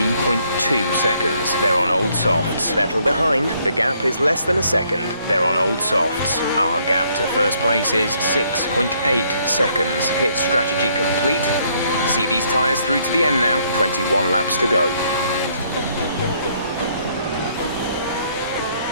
seconds. They're on old softs. Vettel behind, the gap is less than a second. They're on old softs. Our gap to first place is 6.8 seconds. Pit strategy complete. See these tyres through to the end now. 21 laps to go.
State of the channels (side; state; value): both; inverted; correlation -0.68